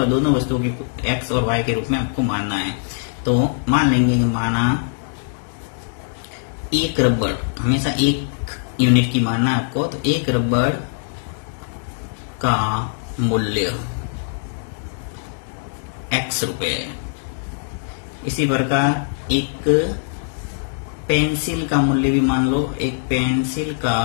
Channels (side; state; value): right; silent; digital silence